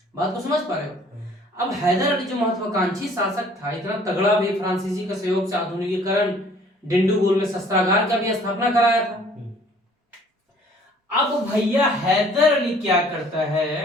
बात को समझ पा रहे हो। अब हैदर अली जो महत्वाकांक्षी शासक था, इतना तगड़ा भी, फ्रांसीसी के सहयोग से आधुनिकीकरण, डिंडीगुल में शस्त्रागार का भी स्थापना कराया था। अब भैया हैदर अली क्या करता है,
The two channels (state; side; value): normal; both; correlation 0.55